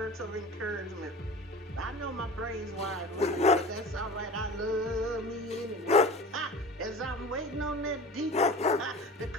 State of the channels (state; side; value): normal; both; correlation 0.37